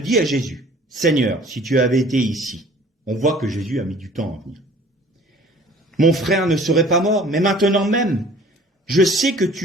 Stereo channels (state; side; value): normal; both; correlation 0.51